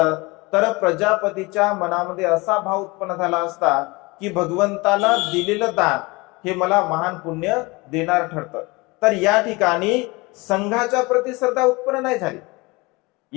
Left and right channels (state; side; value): quieter; right; 24.7 dB